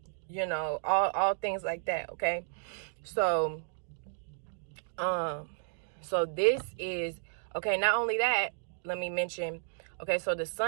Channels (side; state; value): left; silent; digital silence